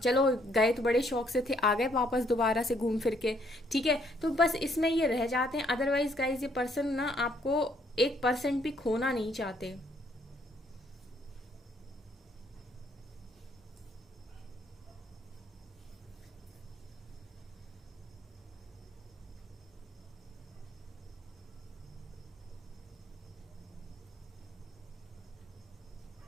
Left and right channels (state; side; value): normal; both; correlation 0.68